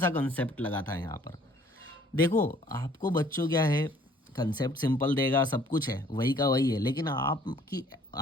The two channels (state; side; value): normal; both; correlation 0.58